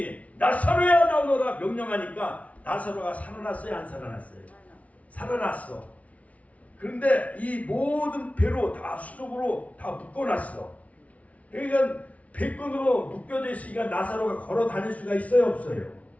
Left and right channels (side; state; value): right; late; 0.067 ms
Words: 나사로야 나오너라 명령하니까 나사로가 살아났어요, 안 살아났어요? 살아났어. 그런데 이 모든 배로 다 수족으로 다 묶어놨어. 그러니까 배끈으로 묶여져 있으니까 나사로가 걸어 다닐 수가 있어요, 없어요?